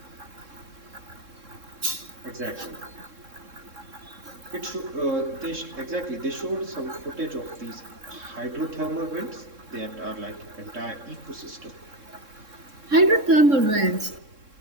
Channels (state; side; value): late; left; 3.7 ms